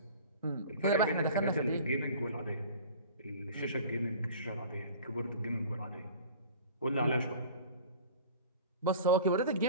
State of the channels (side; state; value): both; inverted; correlation -0.43